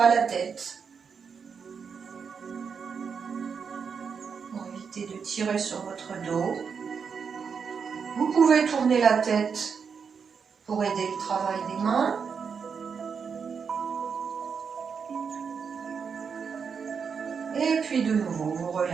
la tête. Pour éviter de tirer sur votre dos. Vous pouvez tourner la tête pour aider le travail des mains. Et puis de nouveau, vous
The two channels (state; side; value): quieter; left; 6.2 dB